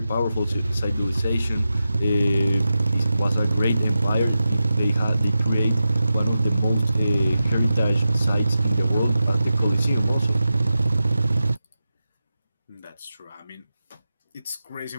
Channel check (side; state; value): both; inverted; correlation -0.91